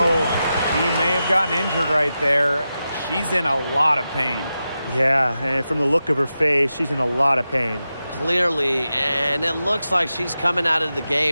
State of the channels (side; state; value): both; inverted; correlation -0.91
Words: he may have gotten injured right there. She's in a lot of pain. Yeah, and from the look of her face, she's in a lot of pain. Clearly, and it looks like she's coming out of the